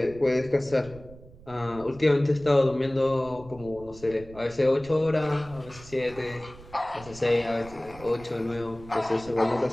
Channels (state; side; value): noise; right; rumble, 19 dB below the sound